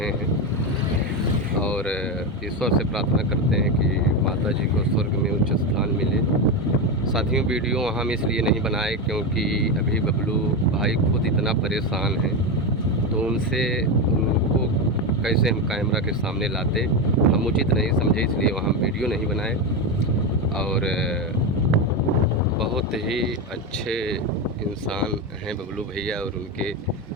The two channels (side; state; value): both; normal; correlation 0.13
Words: हैं और ईश्वर से प्रार्थना करते हैं कि माता जी को स्वर्ग में उच्च स्थान मिले। साथियों, वीडियो हम इसलिए नहीं बनाए क्योंकि अभी बबलू भाई खुद इतना परेशान हैं, तो उनको कैसे हम कैमरा के सामने लाते, हम उचित नहीं समझे, इसलिए वहाँ वीडियो नहीं बनाए। और बहुत ही अच्छे इंसान हैं बबलू भैया, और उनके